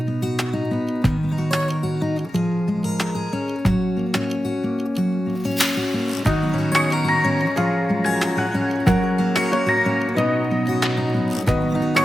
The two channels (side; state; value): both; normal; correlation 0.92